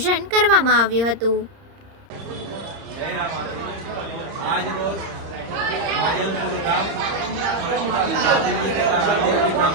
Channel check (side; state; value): left; late; 30 ms